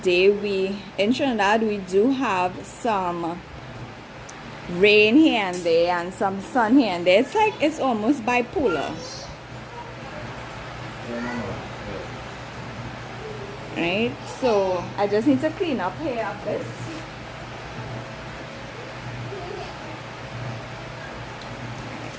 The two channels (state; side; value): identical; both; correlation 1.00